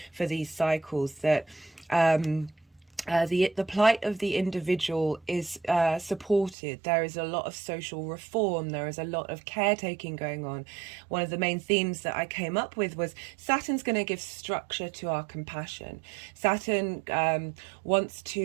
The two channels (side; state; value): left; drops out; at 6.6 s